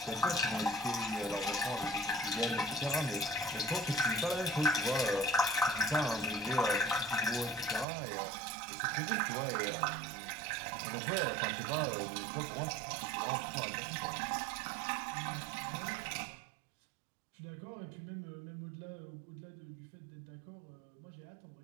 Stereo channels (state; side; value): drops out; left; at 7.9 s